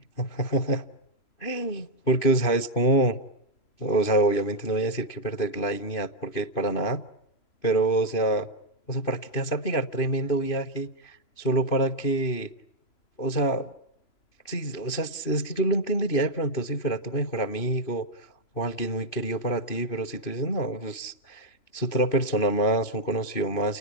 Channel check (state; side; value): late; right; 2.5 ms